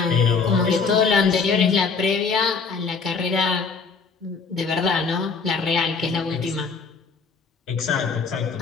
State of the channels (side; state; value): right; quieter; 5.1 dB